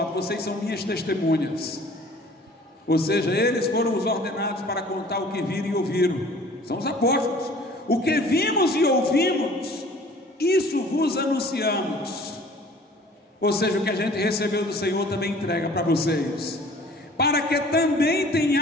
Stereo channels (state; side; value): normal; both; correlation 0.49